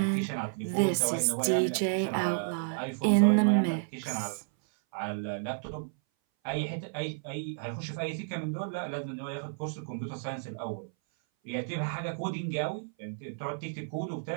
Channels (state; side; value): silent; left; 57 dB below the other